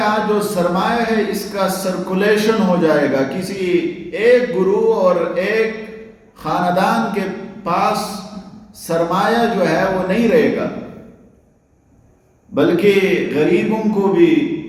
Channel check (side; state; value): both; identical; correlation 1.00